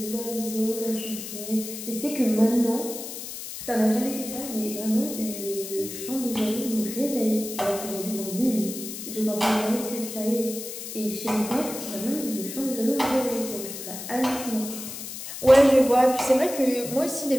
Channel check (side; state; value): left; noise; hiss, 9 dB below the sound